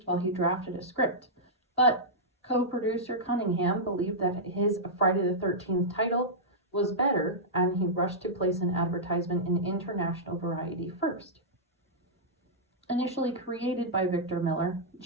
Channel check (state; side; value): normal; both; correlation -0.11